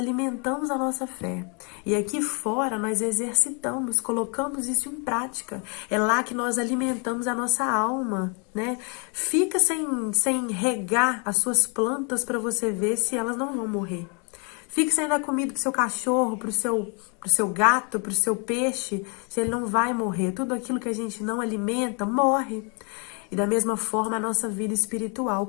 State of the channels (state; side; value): quieter; right; 35.8 dB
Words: a nossa fé. E aqui fora nós exercitamos, colocamos isso em prática. É lá que nós alimentamos a nossa alma, né? Fica sem regar as suas plantas para você ver se elas não vão morrer. Fique sem dar comida pro seu cachorro, pro seu gato, pro seu peixe, se ele não vai morrer. Tudo aquilo que a gente não alimenta, morre. E da mesma forma a nossa vida espiritual.